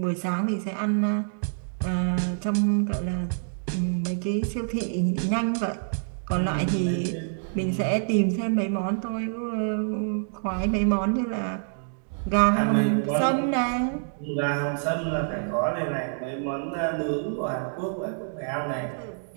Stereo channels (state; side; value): silent; left; digital silence